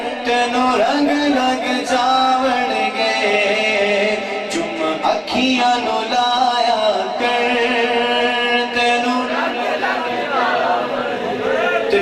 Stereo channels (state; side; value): identical; both; correlation 1.00